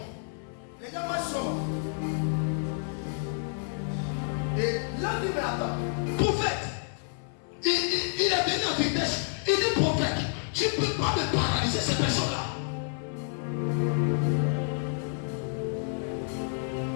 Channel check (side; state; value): right; silent; 58 dB below the other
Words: Les gens marchent comment? Et là, tu me attends. Prophète, il est venu en vitesse. Il dit, prophète, tu ne peux pas me paralyser cette personne-là.